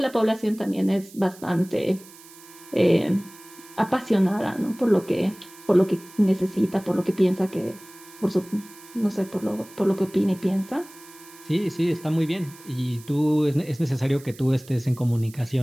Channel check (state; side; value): noise; right; hiss, 21 dB below the sound